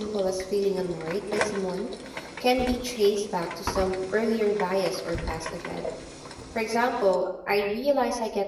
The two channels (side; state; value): both; identical; correlation 1.00